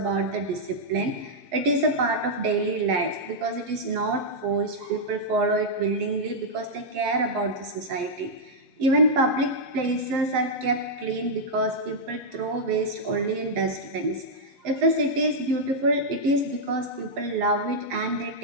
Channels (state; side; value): late; left; 7.7 ms